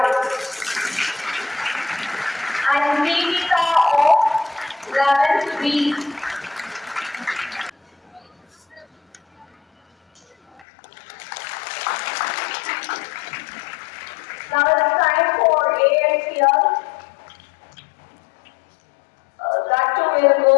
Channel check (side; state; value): right; drops out; at 10.7 s